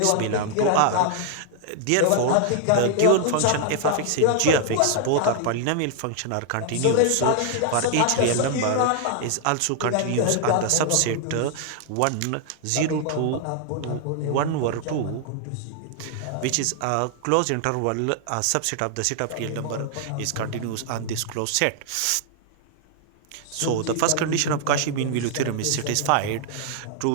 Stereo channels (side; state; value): both; different; correlation 0.00